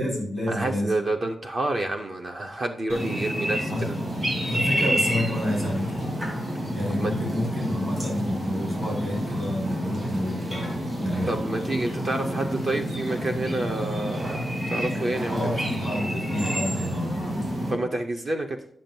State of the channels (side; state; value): both; normal; correlation 0.88